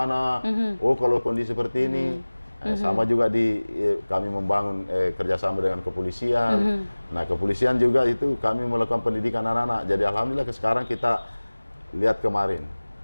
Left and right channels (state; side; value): inverted; both; correlation -1.00